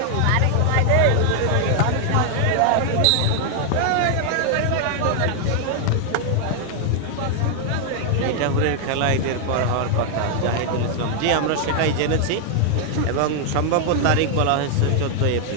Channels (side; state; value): both; different; correlation 0.00